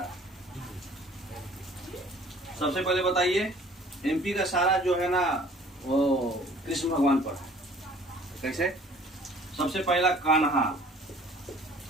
सबसे पहले बताइए, एमपी का सारा जो है ना वो कृष्ण भगवान पर है। कैसे, सबसे पहला कान्हा,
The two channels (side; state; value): both; normal; correlation 0.52